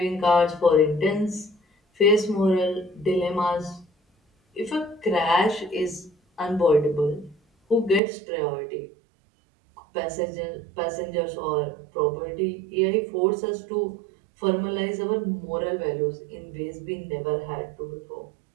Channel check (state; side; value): drops out; left; at 8.0 s